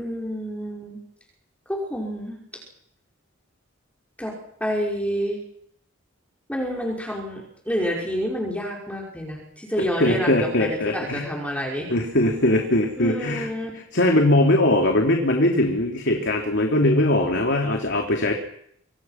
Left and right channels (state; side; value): normal; both; correlation 0.31